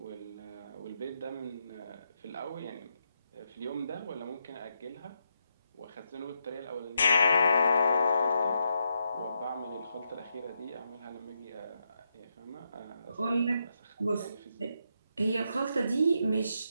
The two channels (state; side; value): inverted; both; correlation -0.82